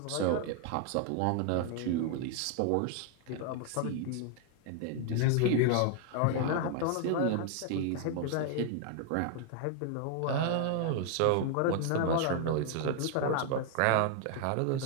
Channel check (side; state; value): both; different; correlation 0.00